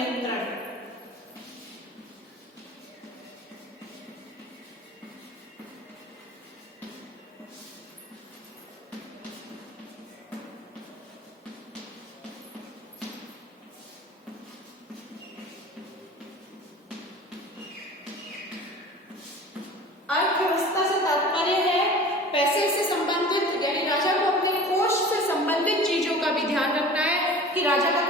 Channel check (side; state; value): both; normal; correlation 0.40